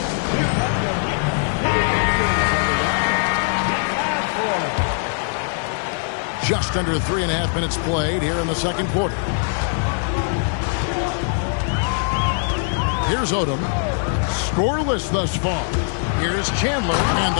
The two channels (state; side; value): silent; right; 65 dB below the other